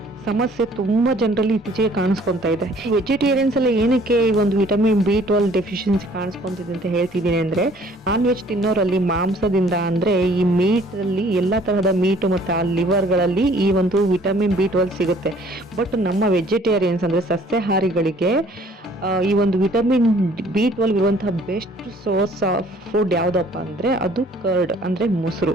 ಸಮಸ್ಯೆ ತುಂಬ ಜನರಲ್ಲಿ ಇತ್ತೀಚೆಗೆ ಕಾಣಿಸ್ಕೊತಾ ಇದೆ. ವೆಜಿಟೇರಿಯನ್ಸ್ ಎಲ್ಲ ಏನಕ್ಕೆ ಈ ಒಂದು ವಿಟಮಿನ್ B12 ಡೆಫಿಷಿಯನ್ಸಿ ಕಾಣಿಸ್ಕೊಂತಿದೆ ಅಂತ ಹೇಳ್ತಿದ್ದೀನಿ ಅಂದರೆ ನಾನ್ ವೆಜ್ ತಿನ್ನೋರಲ್ಲಿ ಮಾಂಸದಿಂದ ಅಂದರೆ ಈ ಮೀಟಲ್ಲಿ ಎಲ್ಲ ತರಹದ ಮೀಟು ಮತ್ತು ಆ ಲಿವರ್ಗಳಲ್ಲಿ ಈ ಒಂದು ವಿಟಮಿನ್ B12 ಸಿಗುತ್ತೆ. ಬಟ್ ನಮ್ಮ ವೆಜಿಟೇರಿಯನ್ಸ್ ಅಂದರೆ ಸಸ್ಯಾಹಾರಿಗಳಿಗೆ ಈ ಒಂದು ವಿಟಮಿನ್ B12 ಇರುವಂತಹ ಬೆಸ್ಟ್ ಸೋರ್ಸ್ ಆಫ್ ಫುಡ್ ಯಾವುದಪ್ಪ ಅಂದರೆ ಅದು ಕರ್ಡ್ ಅಂದರೆ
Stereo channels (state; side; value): normal; both; correlation 0.57